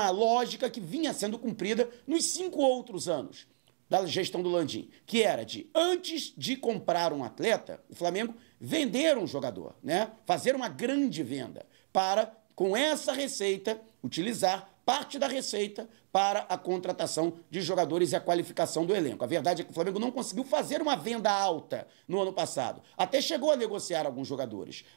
lógica que vinha sendo cumprida nos 5 outros anos da gestão do Landim, que era de, antes de comprar um atleta, o Flamengo vender um jogador, né? Fazer uma grande venda para, com essa receita, utilizar parte da receita para a contratação de jogadores e a qualificação do elenco. A verdade é que o Flamengo não conseguiu fazer uma venda alta no ano passado. Até chegou a negociar alguns jogadores,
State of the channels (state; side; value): silent; left; digital silence